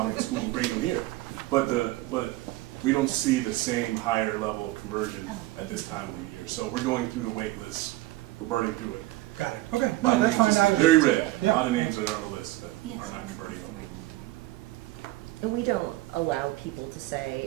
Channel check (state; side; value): quieter; left; 17.8 dB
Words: of school and bringing them here. But we don't see the same higher level of conversion at this time of the year. So we're going through the wait list. We're burning through it. Got it, okay, A lot no, of that's names, fine. just very red. A Yeah. lot of names that are on the list that are not converting over. And we don't allow people to say,